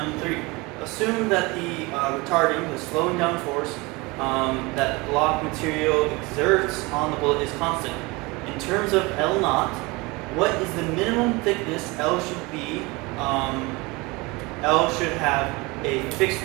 Assume that the retarding, the slowing down force that block material exerts on the bullet is constant. In terms of L naught, what is the minimum thickness L should be? L should have a fixed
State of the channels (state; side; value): quieter; left; 24.7 dB